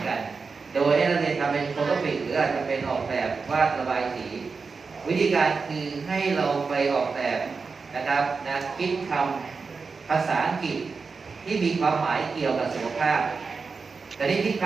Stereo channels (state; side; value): quieter; left; 4.7 dB